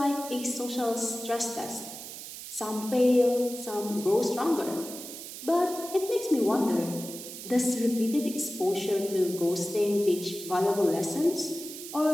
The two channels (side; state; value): right; noise; hiss, 11 dB below the sound